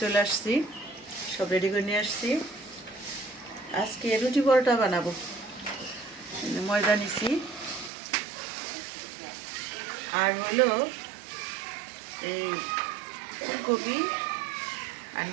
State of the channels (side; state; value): left; drops out; at 7.9 s